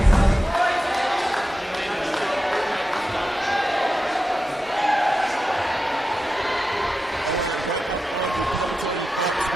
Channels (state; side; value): normal; both; correlation 0.91